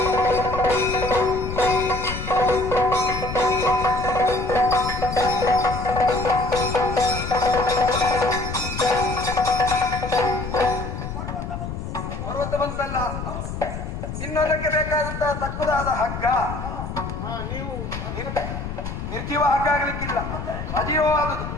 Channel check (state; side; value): noise; left; rumble, 6 dB below the sound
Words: ಪರ್ವತ ಬಂತಲ್ಲ. ಇನ್ನೊಂದಕ್ಕೆ ಬೇಕಾದಂತಹ ತಕ್ಕುದಾದ ಹಗ್ಗ. ನೀವು ನಿರ್ಜೀವ ಹಗ್ಗ ಆಗ್ಲಿಕ್ಕಿಲ್ಲ, ಸಜೀವವಾದುದು.